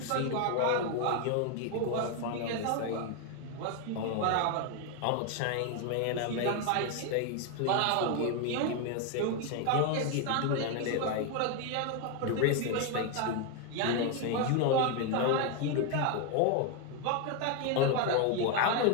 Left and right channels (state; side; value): different; both; correlation 0.01